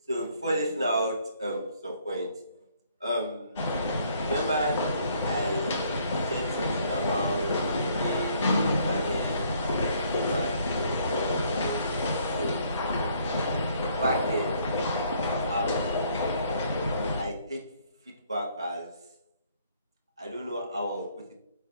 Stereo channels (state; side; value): inverted; both; correlation -0.65